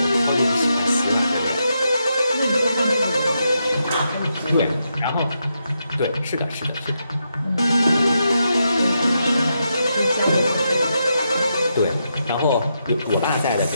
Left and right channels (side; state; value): both; inverted; correlation -0.83